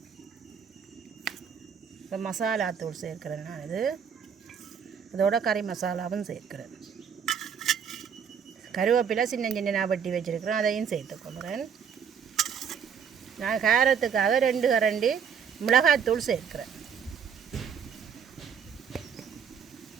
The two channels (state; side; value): quieter; left; 7.3 dB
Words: இப்போ மசாலா தூள் சேர்க்குறேன். நான் இதோட கறி மசாலாவும் சேர்க்குறேன். கருவேப்பிலை சின்ன சின்ன நான் வெட்டி வச்சுருக்கிறேன், அதையும் சேர்த்துக்கொள்கிறேன். நான் காரத்துக்காக 2 கரண்டி மிளகாத்தூள் சேர்க்குறேன்.